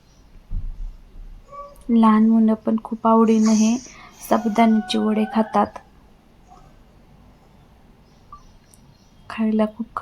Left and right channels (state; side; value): identical; both; correlation 1.00